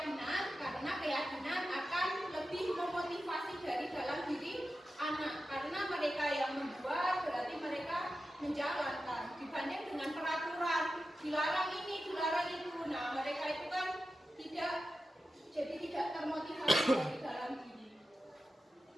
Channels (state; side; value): normal; both; correlation 0.92